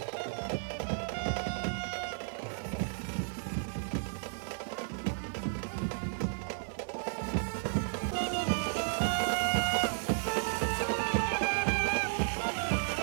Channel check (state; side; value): silent; left; digital silence